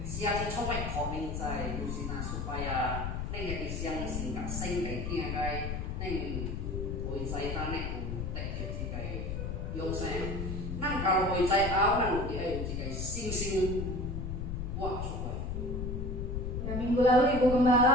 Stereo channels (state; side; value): noise; left; rumble, 3 dB below the sound